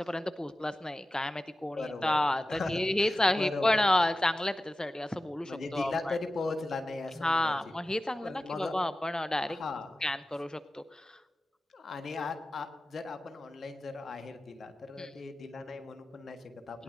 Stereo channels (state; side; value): normal; both; correlation 0.94